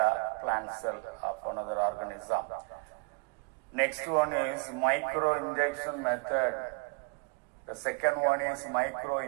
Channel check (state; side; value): quieter; left; 32.5 dB